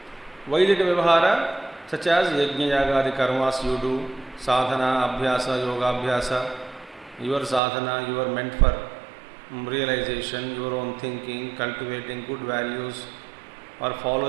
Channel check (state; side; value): drops out; left; at 7.6 s